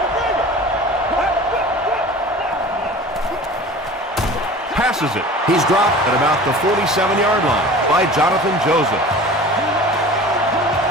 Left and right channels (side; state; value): both; normal; correlation 0.40